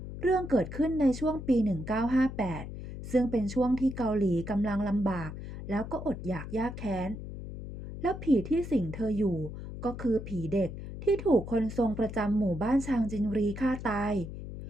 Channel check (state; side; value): noise; left; hum, 9 dB below the sound